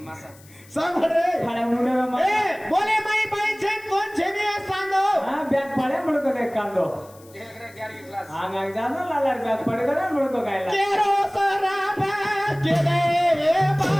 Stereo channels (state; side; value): noise; left; hiss, 25 dB below the sound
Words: सांग रे फाड्या मुंडे ए बोले माई बाई छेन कोण छेनी है सांगो हा बॅग पाड्या म्हणतो काय कांदो आंगांग जानो लालार बॅग पड गरा म्हणतो काय केरो सराबा केले रे